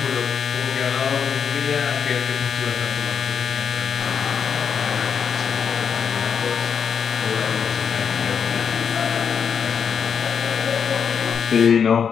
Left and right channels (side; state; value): right; quieter; 7.1 dB